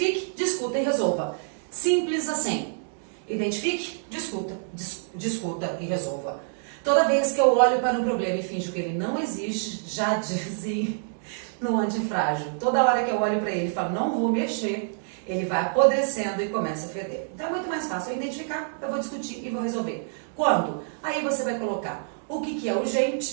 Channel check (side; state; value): left; silent; digital silence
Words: discuta e resolva. Simples assim. Identifique, discuta e resolva. Toda vez que eu olho para um problema e finjo que ele não existe, já dizem no antifrágil. Toda hora que eu olho para ele e falo, não vou mexer, ele vai apodrecendo e começa a feder. Então é muito mais fácil eu identificar, eu vou discutir e vou resolver. Quando? Aí você vai colocar o que é